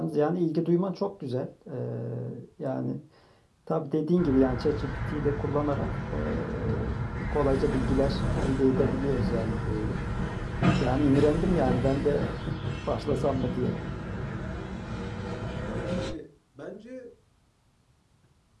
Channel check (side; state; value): both; identical; correlation 1.00